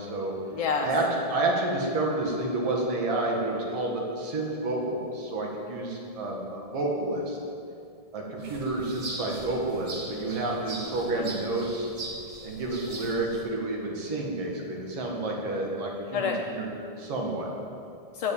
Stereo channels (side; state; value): right; late; 1.7 ms